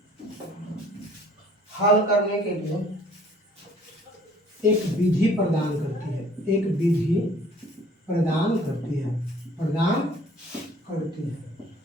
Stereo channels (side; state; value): both; normal; correlation 0.55